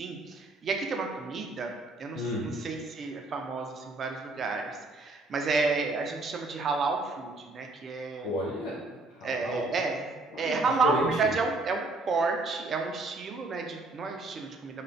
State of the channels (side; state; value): left; quieter; 3.1 dB